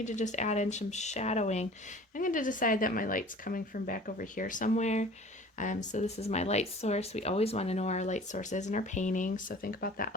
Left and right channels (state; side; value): normal; both; correlation 0.45